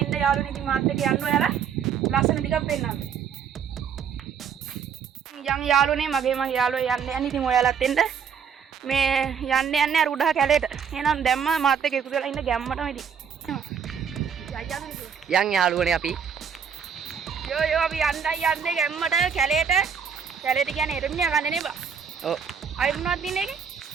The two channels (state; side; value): quieter; left; 7.2 dB